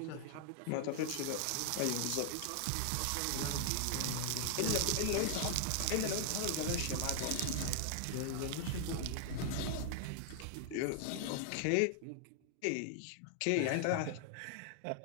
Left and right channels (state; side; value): different; both; correlation 0.00